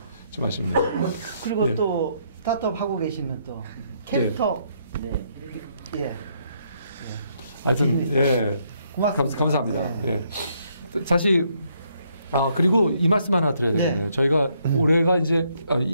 좀 아쉽네요. 그리고 또 스타트업 하고 계시면 또 캐릭터 하여튼 감사합니다. 사실 그리고 이 말씀 하나 드려야 되겠네요. 저희가 올해가 이제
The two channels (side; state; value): both; inverted; correlation -0.72